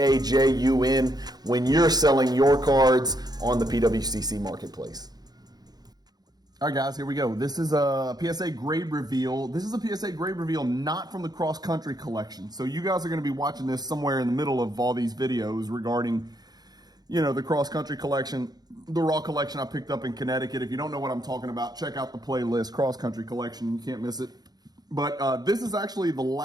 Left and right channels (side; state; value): left; late; 0.19 ms